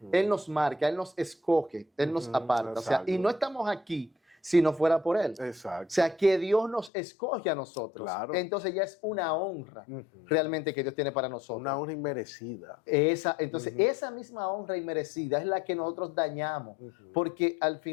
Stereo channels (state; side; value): drops out; right; at 6.9 s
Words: Él nos marca, Él nos escoge, Él nos aparta. O sea, y no estamos aquí si no fuera por Él. Exacto. O sea, que Dios nos escoge a nosotros. Claro. Entonces ya es una honra realmente que Dios tiene para nosotros. Una honra inmerecida. Entonces, esa misma honra inmerecida es la que nosotros dañamos, porque al